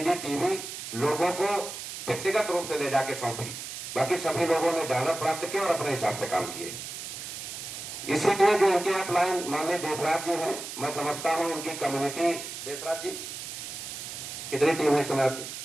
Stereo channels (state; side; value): noise; right; hiss, 8 dB below the sound